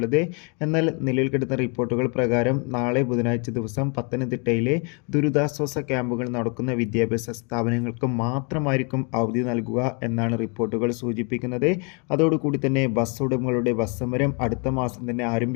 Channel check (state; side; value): quieter; right; 35.4 dB